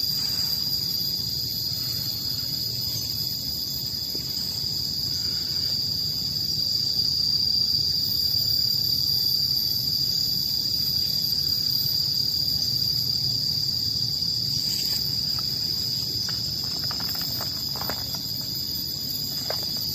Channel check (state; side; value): identical; both; correlation 1.00